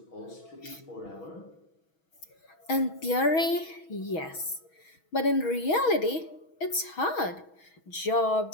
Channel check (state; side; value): late; right; 6.2 ms